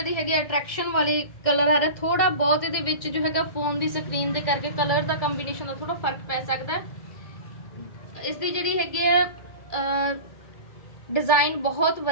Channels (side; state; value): right; late; 1.7 ms